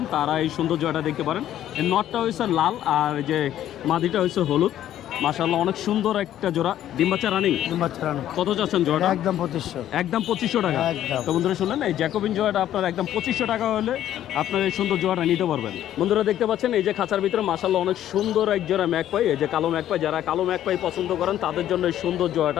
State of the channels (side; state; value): right; quieter; 11.9 dB